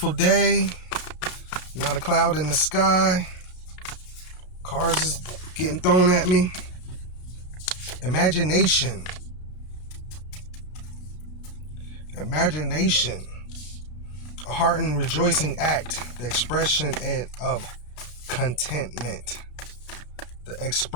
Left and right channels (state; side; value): late; right; 32 ms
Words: day, not a cloud in the sky. Cars is getting thrown at me. Imagination. Imagination. A heart and rejoicing act, the expression of contentment. The